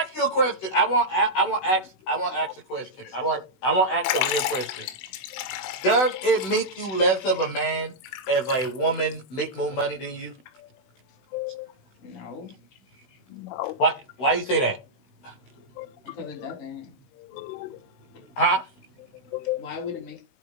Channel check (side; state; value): right; late; 16 ms